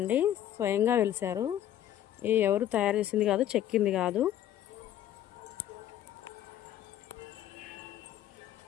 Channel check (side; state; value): right; quieter; 11.7 dB